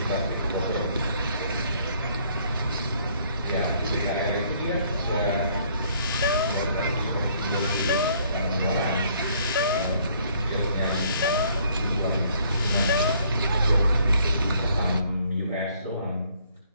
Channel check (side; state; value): both; inverted; correlation -0.63